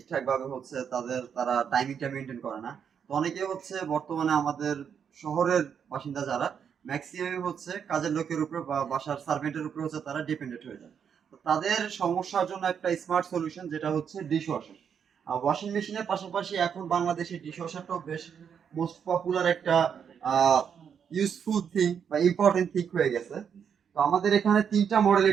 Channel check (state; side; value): quieter; left; 7.5 dB